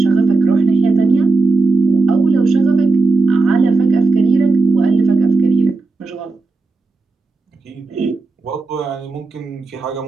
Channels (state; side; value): quieter; left; 3.6 dB